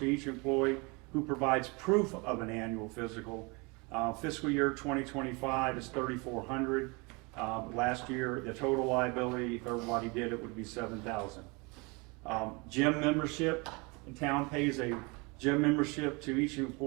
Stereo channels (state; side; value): quieter; left; 28.4 dB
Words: each employee who provides proof of an annual physical. Fiscal year 2025 is $3,400. Last year, the total liability, if everybody did it, would be $7,000. Gym membership, the town pays a gym membership to each